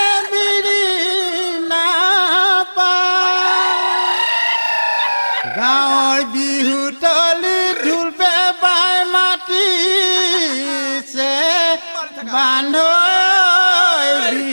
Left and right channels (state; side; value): inverted; both; correlation -1.00